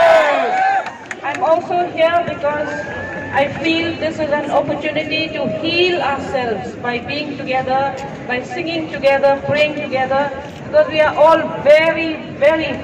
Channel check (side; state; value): both; identical; correlation 1.00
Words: I'm also here because I feel this is an opportunity to heal ourselves by being together, by singing together, praying together, because we are all very, very